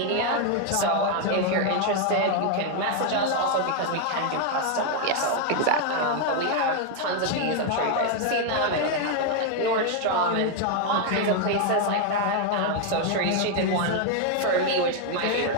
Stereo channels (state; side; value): different; both; correlation 0.01